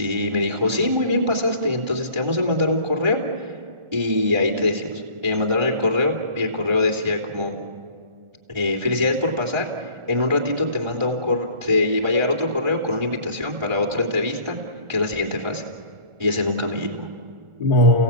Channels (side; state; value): left; late; 1.4 ms